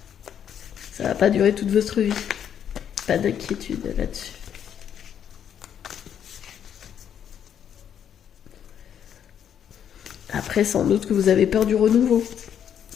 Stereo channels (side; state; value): right; quieter; 9.0 dB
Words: Ça va pas durer toute votre vie. Pas d'inquiétude là-dessus. Après, sans doute que vous avez peur du renouveau.